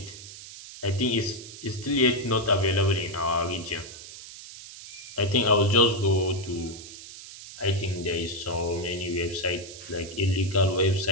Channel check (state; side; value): noise; right; hiss, 14 dB below the sound